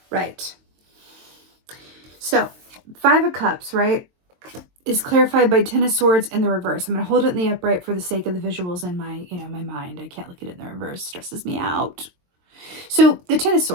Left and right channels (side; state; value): left; late; 22 ms